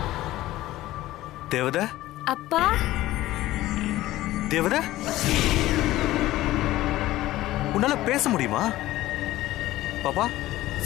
தேவதா அப்பா தேவதா உன்னால பேச முடியுமா? பாப்பா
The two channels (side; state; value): right; quieter; 16.1 dB